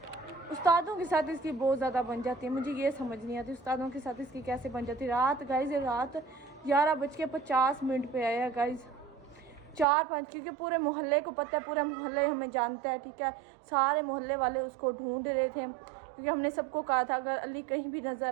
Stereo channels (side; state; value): left; drops out; at 9.9 s